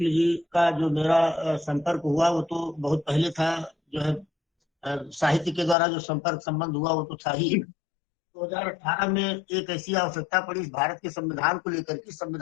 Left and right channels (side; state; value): right; drops out; at 5.8 s